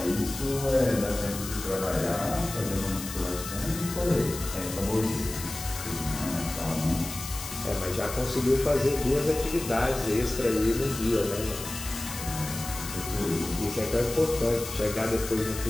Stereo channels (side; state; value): left; noise; hiss, 9 dB below the sound